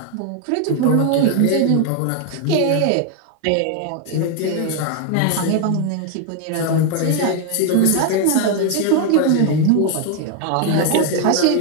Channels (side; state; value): both; different; correlation 0.01